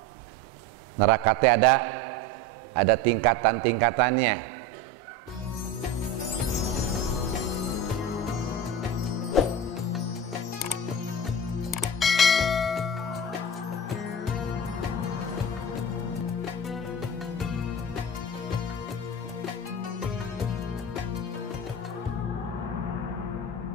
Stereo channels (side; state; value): both; normal; correlation 0.28